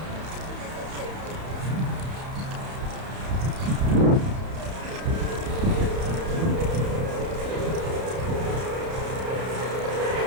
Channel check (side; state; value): left; late; 31 ms